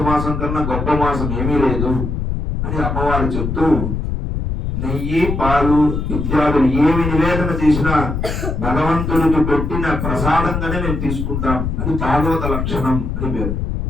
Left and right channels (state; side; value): noise; left; rumble, 3 dB below the sound